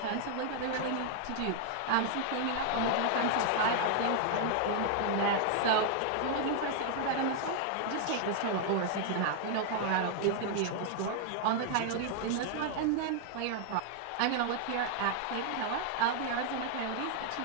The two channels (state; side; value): different; both; correlation 0.00